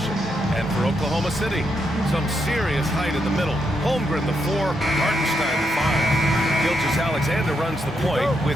And for Oklahoma City, some serious height in the middle. Holmgren the 4, Hartenstein the 5. Gilgeous-Alexander runs the point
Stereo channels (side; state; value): both; normal; correlation 0.81